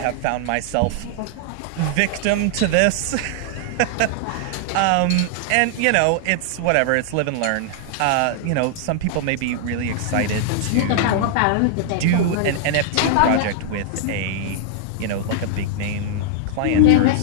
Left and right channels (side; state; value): both; different; correlation -0.01